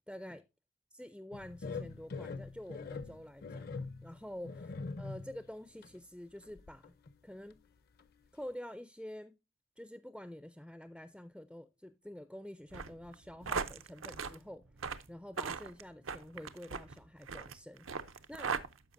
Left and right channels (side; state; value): both; normal; correlation 0.36